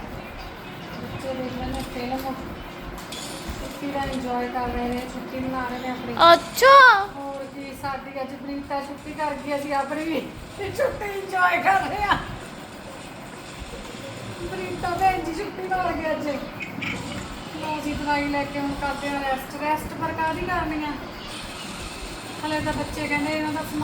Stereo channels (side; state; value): both; identical; correlation 1.00